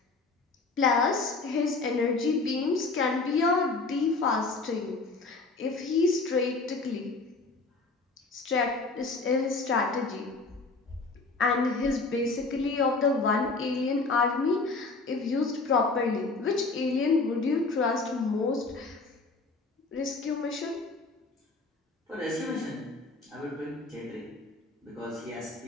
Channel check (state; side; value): quieter; right; 3.7 dB